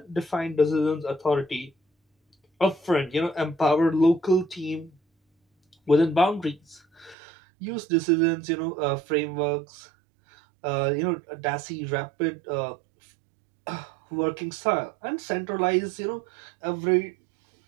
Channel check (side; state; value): left; drops out; at 7.2 s